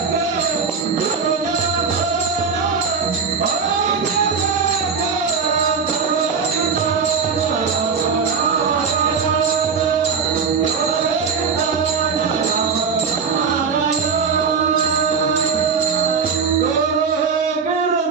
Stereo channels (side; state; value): left; quieter; 5.7 dB